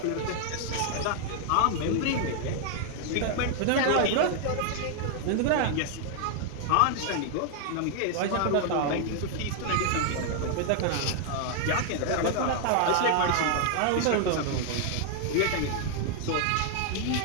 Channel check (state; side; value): different; both; correlation 0.00